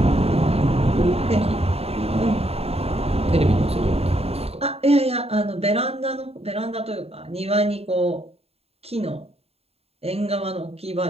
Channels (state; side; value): late; left; 0.29 ms